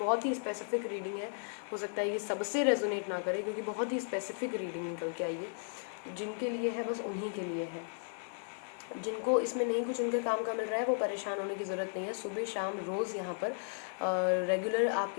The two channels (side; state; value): right; silent; digital silence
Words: ही स्पेसिफिक रीडिंग है, हो सकता है ये सबसे रेजोनेट ना करे, क्योंकि बहुत ही स्पेसिफिक रीडिंग निकल के आई है। जिनके लिए है बस उन्हीं के लिए है। जिनको इसमें नहीं कुछ उनके काम का मिल रहा है वो परेशान होने की ज़रूरत नहीं है। सुबह शाम रोज़ यहाँ पर रेगुलर